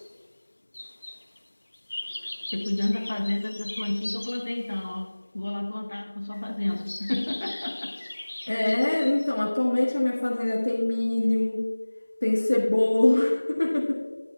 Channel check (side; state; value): both; inverted; correlation -1.00